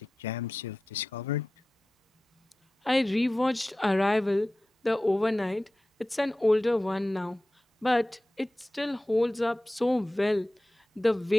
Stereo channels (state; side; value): normal; both; correlation 0.95